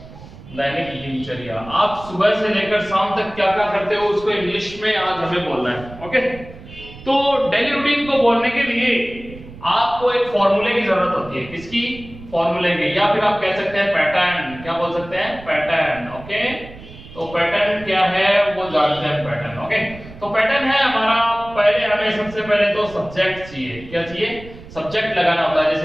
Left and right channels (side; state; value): right; noise; rumble, 17 dB below the sound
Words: दैनिक दिनचर्या. आप सुबह से लेकर शाम तक क्या क्या करते हो उसको इंग्लिश में आज हमें बोलना है. ओके, तो डेली रूटीन को बोलने के लिए आपको एक फॉर्मूले की जरूरत होती है. किसकी? फॉर्मूले की, या फिर आप कह सकते हैं पैटर्न. क्या बोल सकते हैं? पैटर्न. ओके, तो पैटर्न क्या है वो जानते हैं. पैटर्न. ओके, तो पैटर्न है हमारा. पहले हमें सबसे पहले तो सब्जेक्ट चाहिए. क्या चाहिए? सब्जेक्ट लगाना होता है.